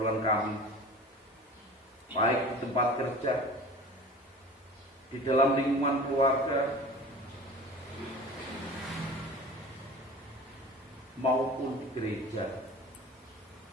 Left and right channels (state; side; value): normal; both; correlation 0.39